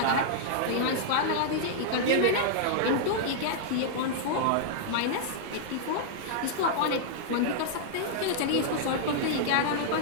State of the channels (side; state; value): both; different; correlation -0.01